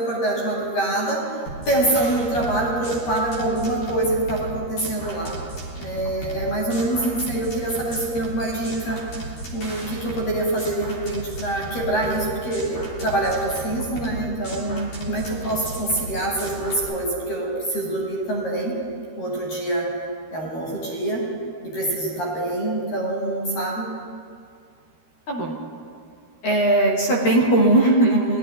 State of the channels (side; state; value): right; late; 13 ms